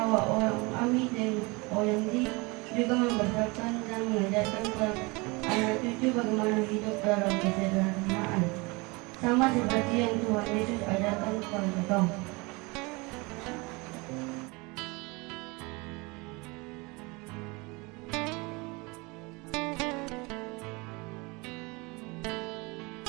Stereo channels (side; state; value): left; quieter; 26.3 dB